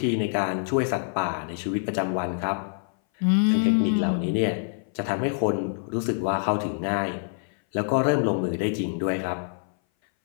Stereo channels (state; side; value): silent; right; 59 dB below the other